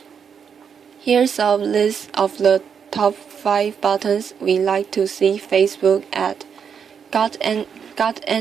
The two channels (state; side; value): quieter; left; 7.0 dB